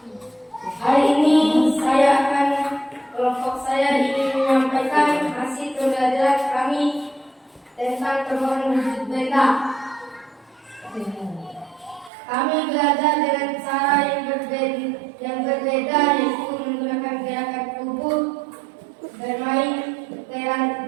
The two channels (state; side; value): drops out; left; at 12.1 s